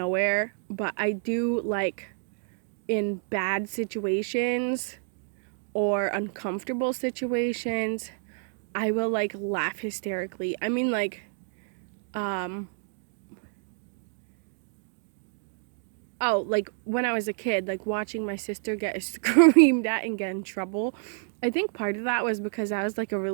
But I do, like, in bad situations or uncomfortable situations, I will, like, laugh hysterically. I mean, like, like when I was a kid, like watching my sister get screamed at and get in trouble. I think part of that was because I was like a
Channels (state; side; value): silent; left; digital silence